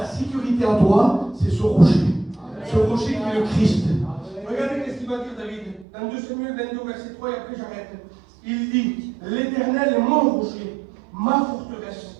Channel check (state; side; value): drops out; left; at 5.9 s